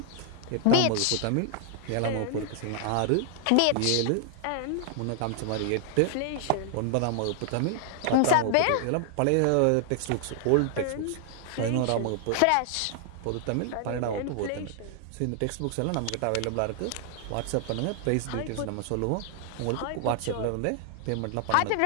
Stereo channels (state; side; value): different; both; correlation 0.00